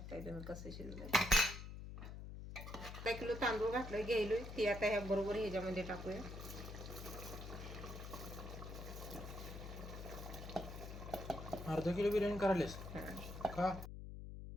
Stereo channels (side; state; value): left; noise; hum, 9 dB below the sound